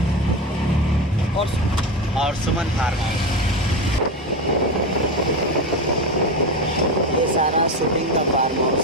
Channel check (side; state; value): both; normal; correlation 0.19